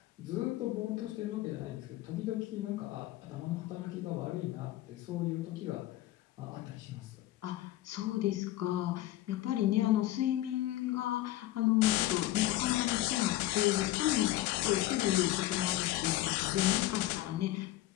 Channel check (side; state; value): right; quieter; 15.5 dB